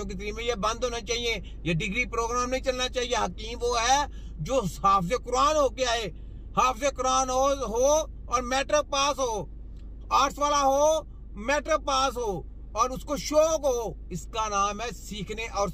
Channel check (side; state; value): both; identical; correlation 1.00